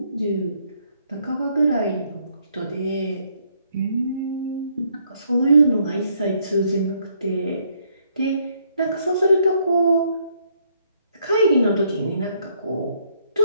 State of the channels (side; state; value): both; inverted; correlation -0.70